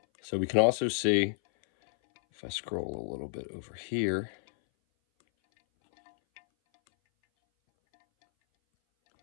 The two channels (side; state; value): right; silent; 58 dB below the other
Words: So we can also see, if I scroll a little bit over here,